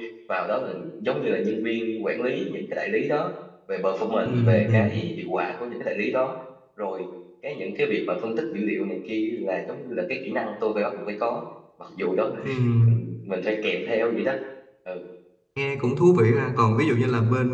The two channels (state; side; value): identical; both; correlation 1.00